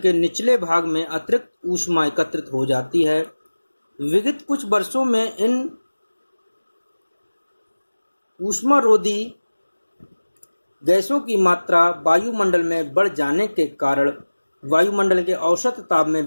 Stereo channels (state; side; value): inverted; both; correlation -1.00